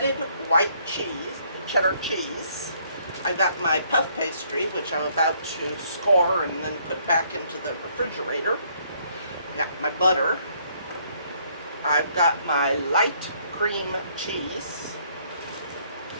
white cheese, cheddar cheese, I got my puff pastry, which I'm about to score and then put back into the refrigerator. I got my butter, I've got my light cream cheese,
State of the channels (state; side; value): inverted; both; correlation -0.66